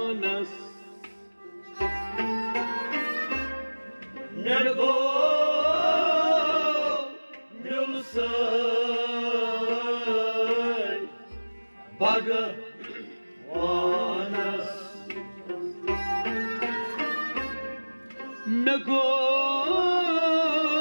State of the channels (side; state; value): both; inverted; correlation -1.00